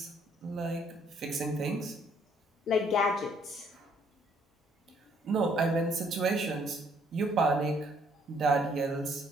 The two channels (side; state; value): both; normal; correlation 0.65